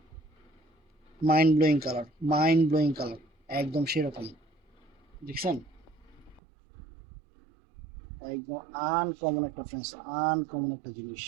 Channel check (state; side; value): drops out; left; at 6.4 s